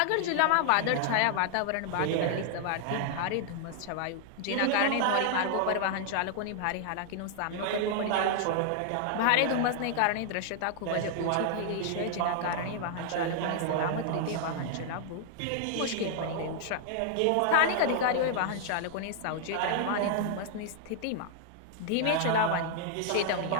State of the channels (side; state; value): both; different; correlation 0.00